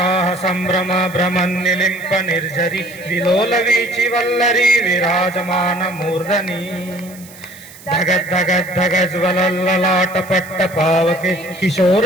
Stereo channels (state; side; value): noise; right; hiss, 20 dB below the sound